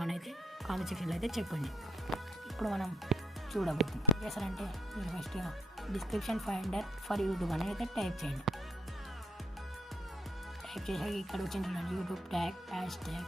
అని అయితే కామెంట్ సెక్షన్లో అయితే చెప్పండి. ఇప్పుడు మనం చూడబోతున్నాం. చేస్తారంటే మీరు ఫస్ట్గా డిస్క్రిప్షన్ ఫైండర్ ఫర్ యూట్యూబ్ అని అయితే టైప్ చేయండి. టైప్ చేసాక ఇక్కడ వచ్చింది యూట్యూబ్ ట్యాగ్ హ్యాష్ ట్యాగ్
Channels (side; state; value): both; normal; correlation 0.71